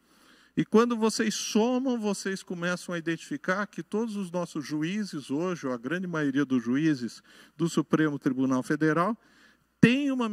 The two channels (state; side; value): identical; both; correlation 1.00